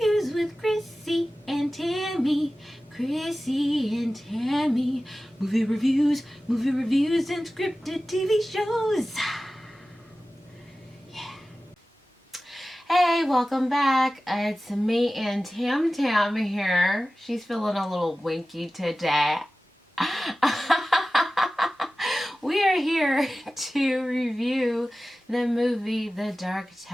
with Chrissie and Tammie. Chrissie and Tammie. Movie reviews and scripted TV shows. Yeah. Hey, welcome back. It's me and Tam here. She's feeling a little winky today. We are here to review the movie The Dark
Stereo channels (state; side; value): normal; both; correlation 0.96